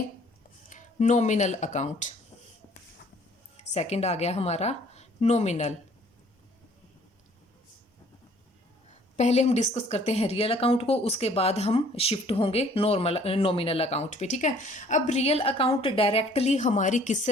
नॉमिनल अकाउंट। सेकंड आ गया हमारा नॉमिनल। पहले हम डिस्कस करते हैं रियल अकाउंट को, उसके बाद हम शिफ्ट होंगे नॉमिनल अकाउंट पे, ठीक है। अब रियल अकाउंट डायरेक्टली हमारी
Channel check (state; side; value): normal; both; correlation 0.57